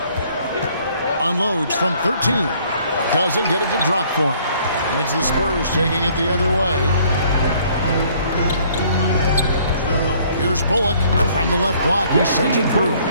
Unloads from 13. Doesn't get it to drop for him. And it's the Spurs taking it the other way. Here's Bullock from the left block. He sends it through.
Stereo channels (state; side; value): inverted; both; correlation -0.61